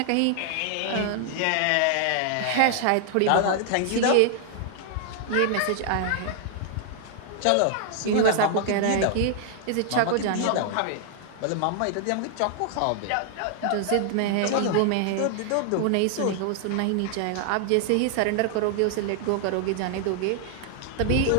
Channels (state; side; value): different; both; correlation 0.00